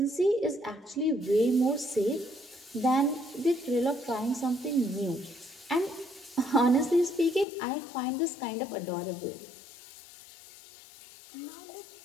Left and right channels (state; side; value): drops out; right; at 7.5 s